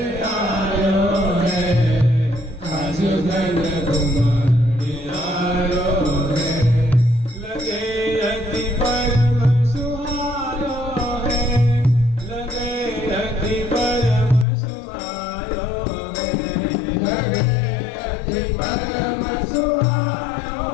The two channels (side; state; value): right; drops out; at 14.5 s